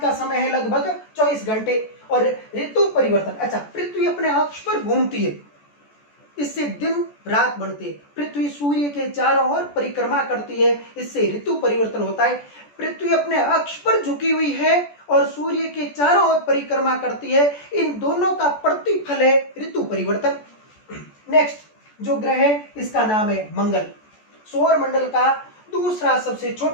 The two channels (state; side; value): late; right; 14 ms